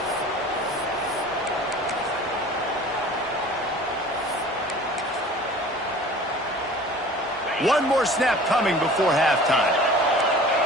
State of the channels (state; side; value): normal; both; correlation 0.44